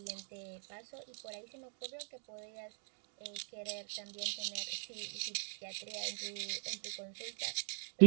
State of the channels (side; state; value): left; silent; 52 dB below the other